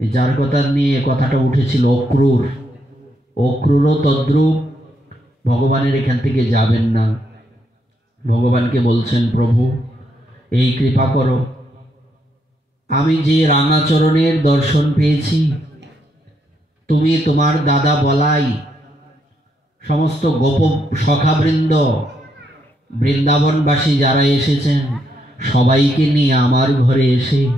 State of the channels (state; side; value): normal; both; correlation 0.77